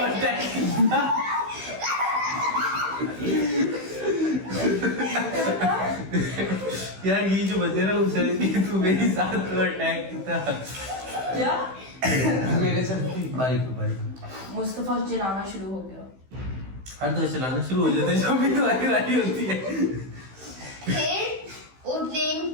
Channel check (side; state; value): left; late; 16 ms